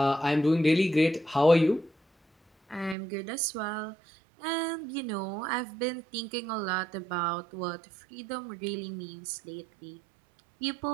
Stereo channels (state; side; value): drops out; left; at 3.0 s